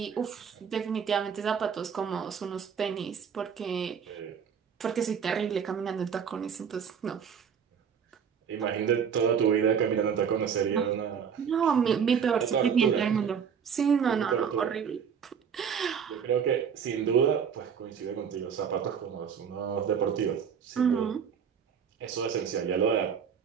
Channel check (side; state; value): left; quieter; 7.2 dB